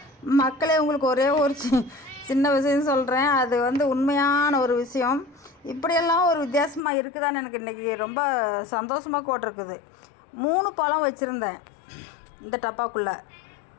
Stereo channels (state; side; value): drops out; right; at 6.8 s